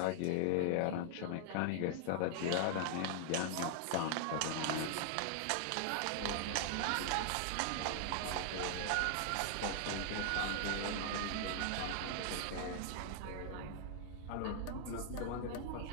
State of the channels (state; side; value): different; both; correlation 0.00